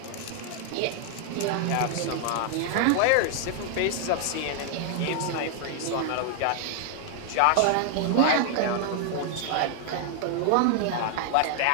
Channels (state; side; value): different; both; correlation 0.00